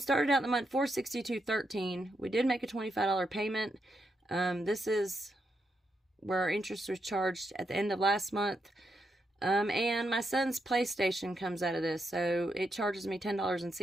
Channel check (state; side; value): normal; both; correlation 0.82